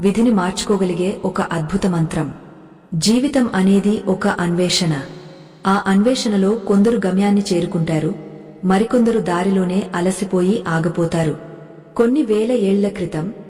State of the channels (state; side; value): identical; both; correlation 1.00